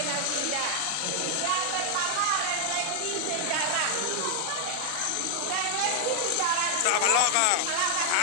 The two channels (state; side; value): different; both; correlation 0.00